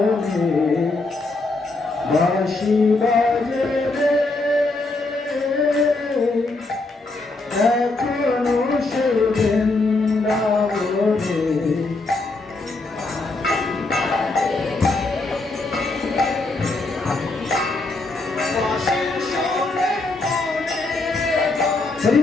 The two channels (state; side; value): quieter; right; 3.2 dB